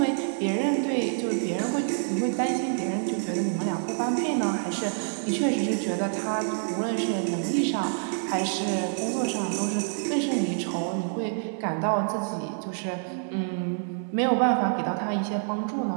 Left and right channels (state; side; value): silent; left; digital silence